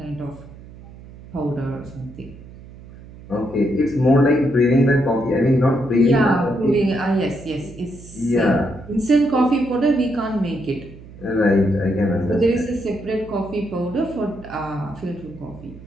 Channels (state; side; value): noise; right; hum, 18 dB below the sound